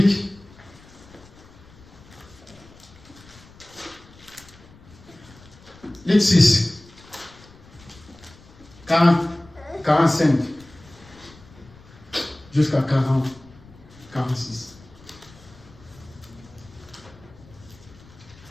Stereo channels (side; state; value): left; noise; rumble, 23 dB below the sound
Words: Luc 6. 45. Jusqu'à 40. 46.